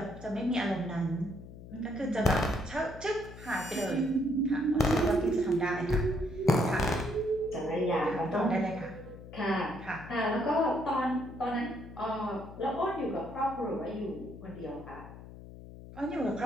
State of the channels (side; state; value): left; noise; hum, 15 dB below the sound